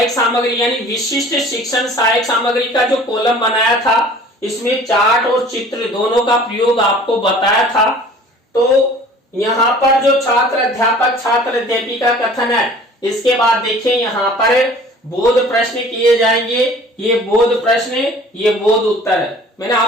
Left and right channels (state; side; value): normal; both; correlation 0.48